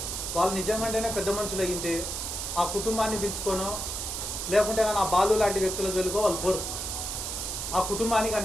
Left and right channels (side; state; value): right; noise; hiss, 4 dB below the sound